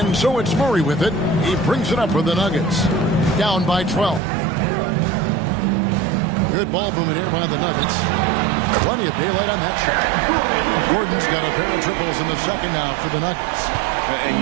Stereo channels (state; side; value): drops out; left; at 4.2 s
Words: so it's Murray with it. He brings it up for the Nuggets. Down by 12. Good ball movement here by the Nuggets. Plenty of daylight on that shot. Gordon's got a pair of triples in the second now for the Nuggets. And